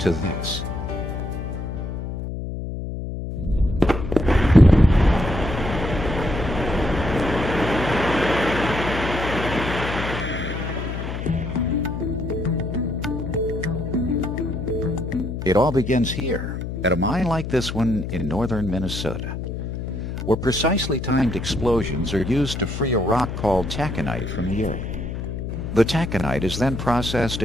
this? It all begins here, at a mine like this one in northern Minnesota, where precisely timed explosions are used to free a rock called taconite from the earth. The taconite is then processed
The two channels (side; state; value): left; noise; hum, 5 dB below the sound